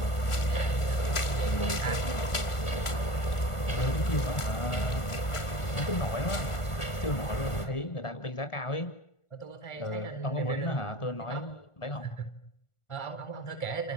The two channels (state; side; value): late; right; 1.5 ms